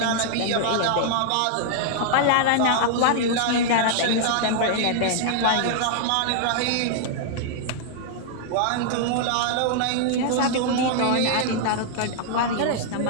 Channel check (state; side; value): different; both; correlation -0.01